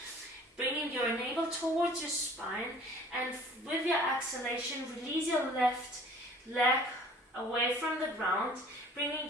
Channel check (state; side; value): normal; both; correlation 0.50